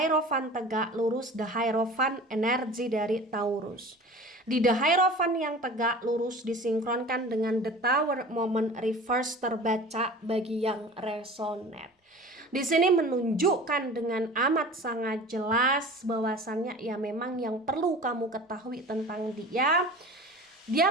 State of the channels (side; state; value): both; normal; correlation 0.40